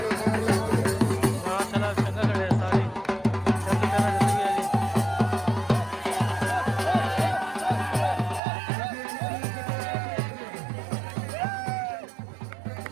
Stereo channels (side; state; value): left; drops out; at 8.4 s